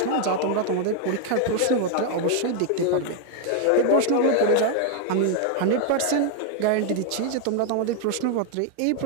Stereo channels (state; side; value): different; both; correlation 0.01